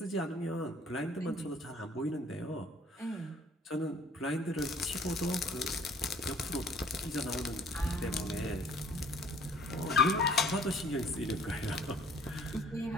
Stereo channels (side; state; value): both; normal; correlation 0.55